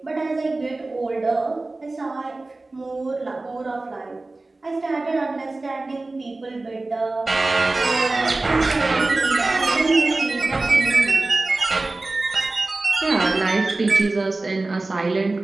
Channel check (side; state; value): left; quieter; 3.2 dB